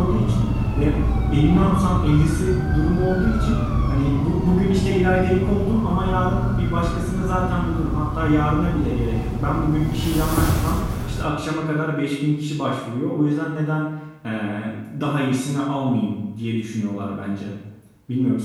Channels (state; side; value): identical; both; correlation 1.00